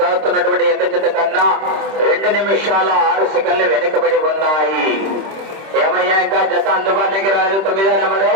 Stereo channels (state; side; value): late; left; 26 ms